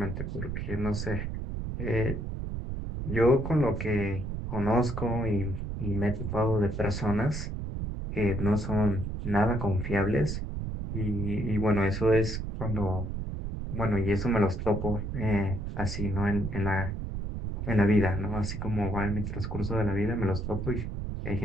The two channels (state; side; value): noise; right; rumble, 4 dB below the sound